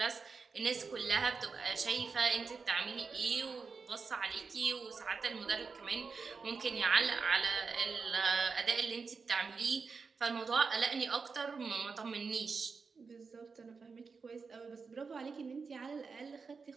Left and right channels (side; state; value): left; quieter; 5.0 dB